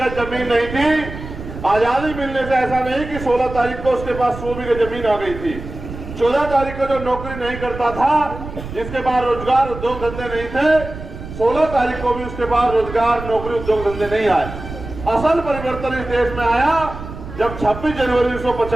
जमीन नहीं थी, आजादी मिलने से ऐसा नहीं कि 16 तारीख को उसके पास 100 बीघे जमीन आ गई थी। 14 तारीख को जो नौकरी नहीं करता था, जिसके पास रोजगार उद्योग धंधे नहीं थे, 16 तारीख को भी उसके पास रोजगार नौकरी उद्योग धंधे नहीं आए। असल परिवर्तन इस देश में आया जब 26 जनवरी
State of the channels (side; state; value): right; noise; rumble, 11 dB below the sound